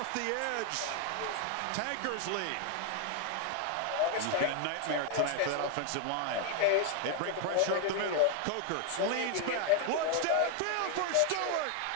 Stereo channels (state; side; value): different; both; correlation 0.00